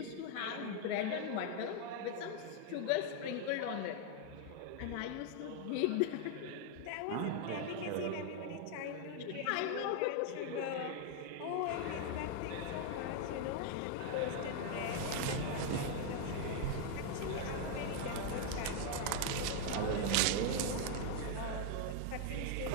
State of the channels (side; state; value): both; different; correlation 0.00